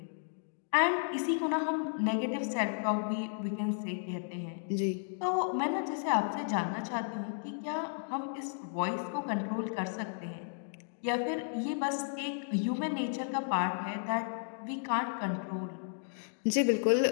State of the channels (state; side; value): silent; right; digital silence